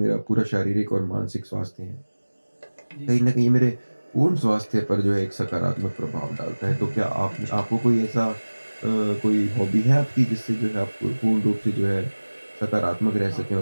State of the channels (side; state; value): both; inverted; correlation -1.00